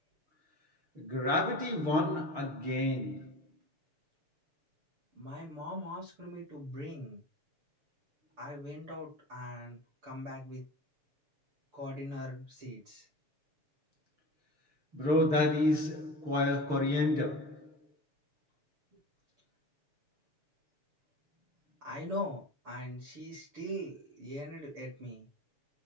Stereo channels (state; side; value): late; left; 6.5 ms